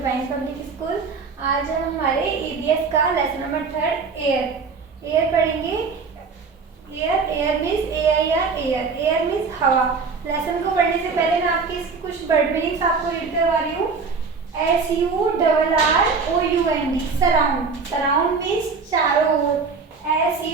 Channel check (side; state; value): left; quieter; 4.8 dB